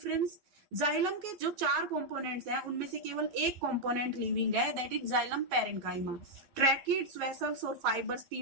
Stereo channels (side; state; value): left; late; 11 ms